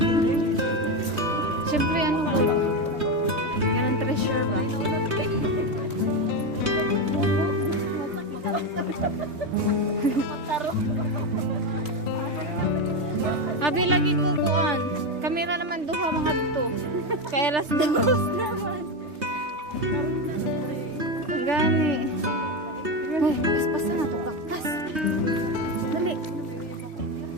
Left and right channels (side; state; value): left; late; 3.4 ms